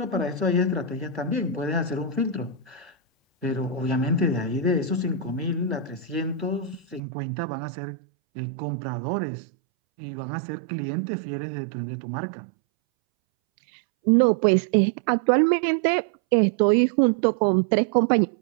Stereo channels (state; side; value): drops out; left; at 7.0 s